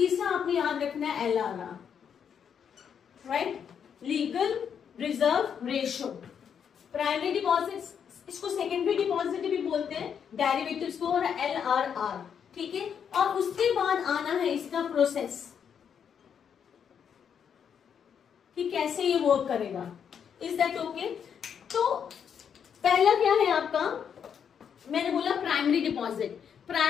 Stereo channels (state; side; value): quieter; right; 7.7 dB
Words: आपने याद रखना है LRR, right. Legal reserve ratio. Primary deposit, इसको सेकेंडरी डिपॉजिट भी बोलते हैं, डेरिवेटिव्स को, और LRR, ठीक है. और उसके बाद आना है इसका प्रोसेस कि कैसे ये वर्क करेगा. Is that okay? तो पहला क्या है आपका? मैंने बोला प्राइमरी डिपॉजिट.